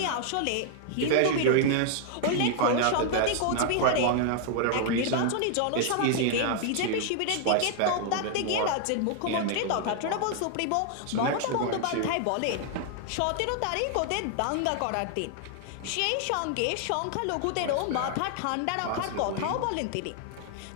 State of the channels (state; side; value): different; both; correlation 0.00